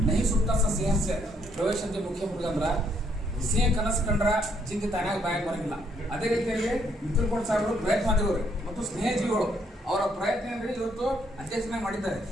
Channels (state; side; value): normal; both; correlation 0.71